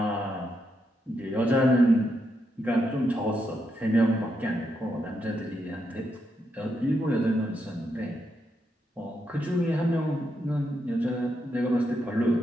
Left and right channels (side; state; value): both; normal; correlation 0.82